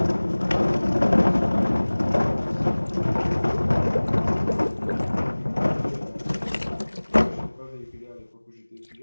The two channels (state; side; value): inverted; both; correlation -1.00